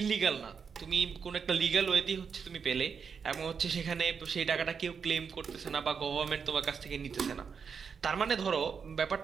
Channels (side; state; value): left; quieter; 6.2 dB